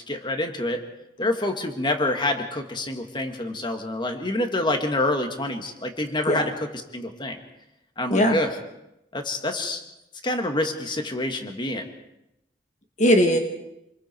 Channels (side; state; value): both; normal; correlation 0.39